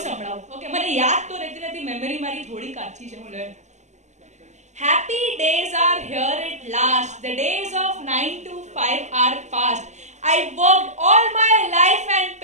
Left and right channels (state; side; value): late; left; 0.34 ms